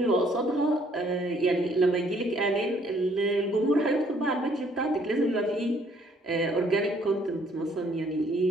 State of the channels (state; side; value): normal; both; correlation 0.64